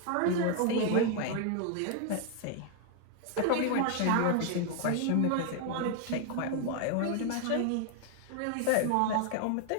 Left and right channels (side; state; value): both; different; correlation 0.00